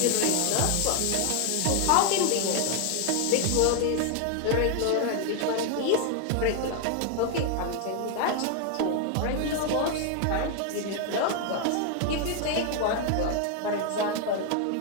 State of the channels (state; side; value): different; both; correlation 0.00